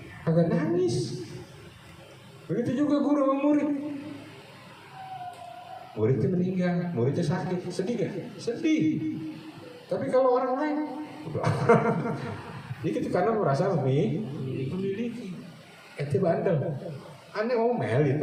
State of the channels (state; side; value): identical; both; correlation 1.00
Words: Agak nangis. Begitu juga guru sama murid. Muridnya meninggal, muridnya sakit, sedih gak? Sedih. Tapi kalau orang lain, itu karena merasa memiliki. Ente bandel, aneh ngomel